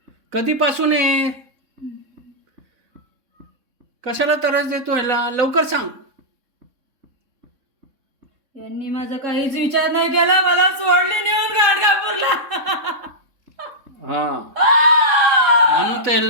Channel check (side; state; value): left; late; 3.6 ms